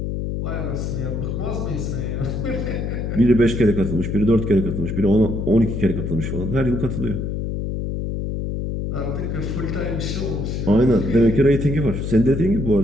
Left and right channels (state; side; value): noise; left; hum, 3 dB below the sound